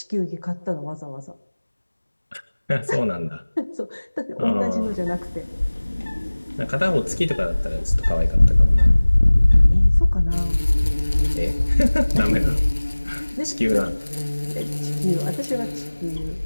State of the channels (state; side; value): inverted; both; correlation -1.00